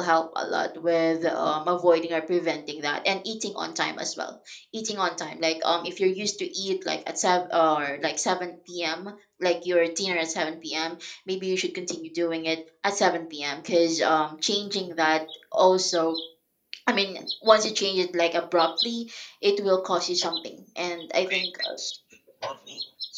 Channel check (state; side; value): identical; both; correlation 1.00